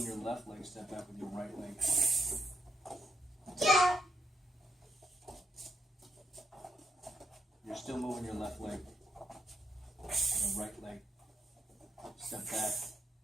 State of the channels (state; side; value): normal; both; correlation 0.78